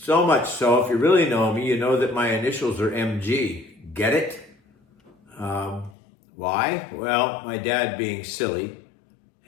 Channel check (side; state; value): right; drops out; at 6.0 s